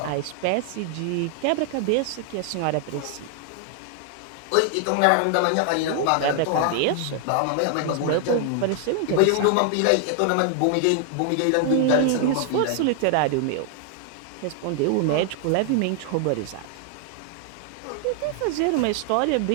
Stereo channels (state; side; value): different; both; correlation 0.00